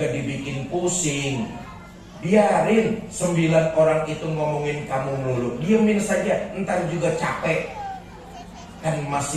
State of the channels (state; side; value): identical; both; correlation 1.00